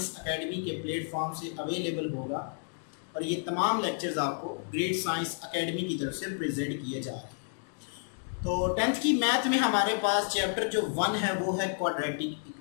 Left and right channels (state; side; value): silent; right; digital silence